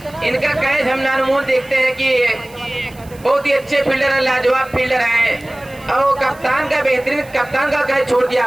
इनका कैच हम नानमोल देखते हैं कि बहुत ही अच्छे फील्डर है, लाजवाब फील्डर है। और कप्तान का बेहतरीन कप्तान का कैच छोड़ दिया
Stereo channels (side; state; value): right; noise; hiss, 25 dB below the sound